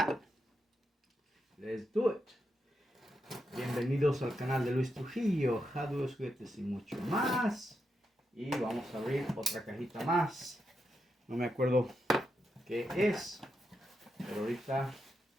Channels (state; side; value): normal; both; correlation 0.84